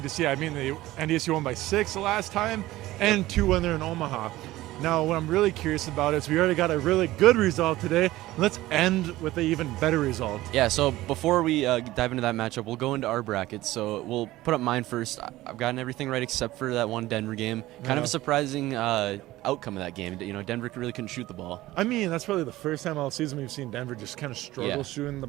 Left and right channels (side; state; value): left; quieter; 16.9 dB